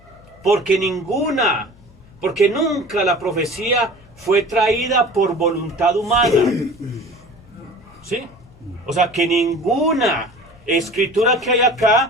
porque nunca la profecía fue traída por voluntad humana. ¿Sí? O sea, que ninguna escritura que hay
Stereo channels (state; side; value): noise; left; hum, 26 dB below the sound